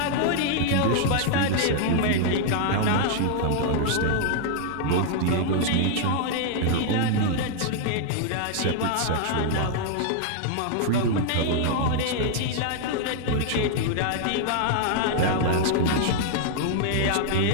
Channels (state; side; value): different; both; correlation -0.01